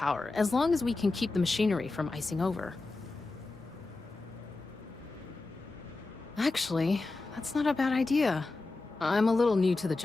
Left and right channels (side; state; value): right; quieter; 3.4 dB